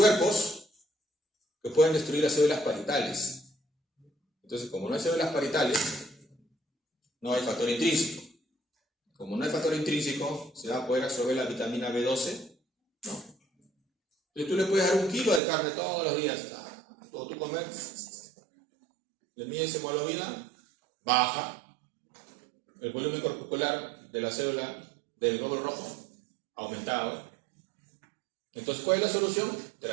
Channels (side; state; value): left; drops out; at 15.4 s